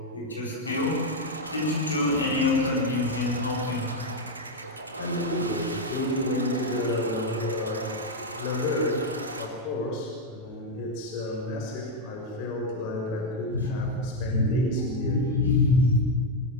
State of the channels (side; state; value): both; normal; correlation 0.02